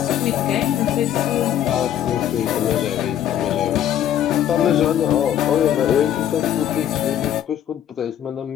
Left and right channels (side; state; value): right; quieter; 10.6 dB